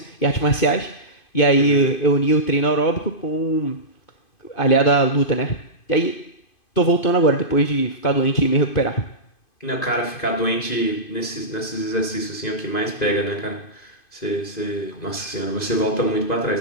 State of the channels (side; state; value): right; late; 2.5 ms